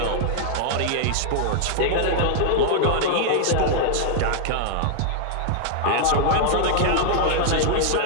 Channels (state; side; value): different; both; correlation -0.01